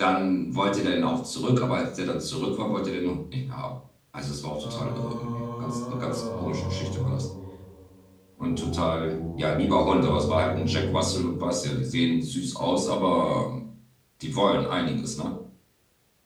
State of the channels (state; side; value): identical; both; correlation 1.00